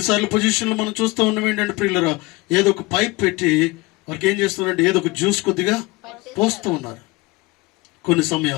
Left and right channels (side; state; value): right; quieter; 22.8 dB